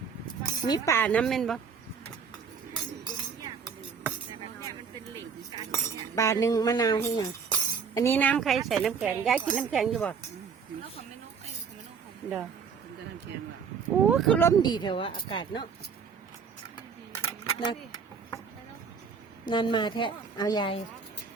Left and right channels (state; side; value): quieter; left; 6.2 dB